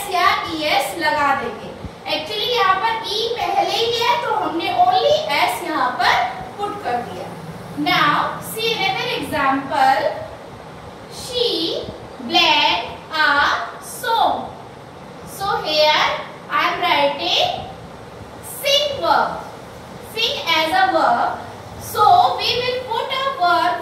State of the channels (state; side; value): identical; both; correlation 1.00